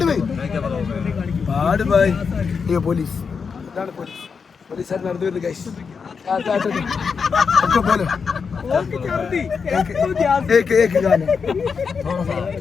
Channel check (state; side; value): quieter; right; 5.7 dB